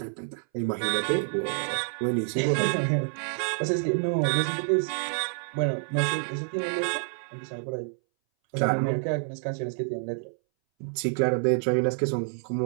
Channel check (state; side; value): silent; left; 59 dB below the other